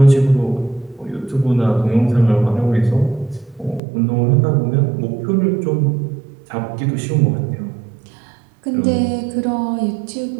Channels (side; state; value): left; drops out; at 3.8 s